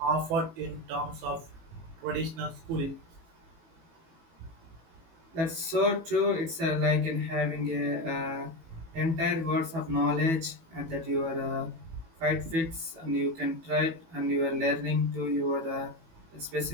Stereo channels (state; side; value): late; left; 18 ms